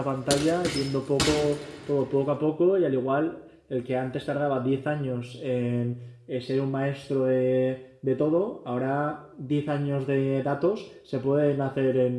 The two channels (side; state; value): both; identical; correlation 1.00